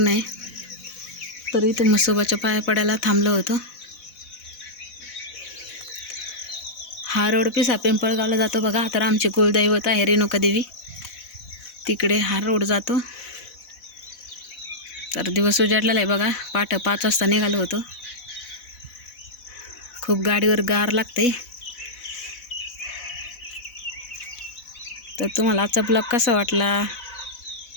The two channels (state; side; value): late; right; 4.1 ms